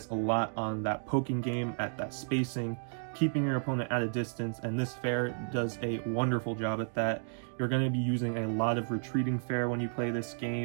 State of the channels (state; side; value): silent; left; digital silence